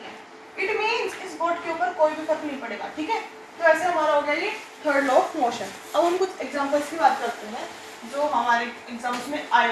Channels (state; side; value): identical; both; correlation 1.00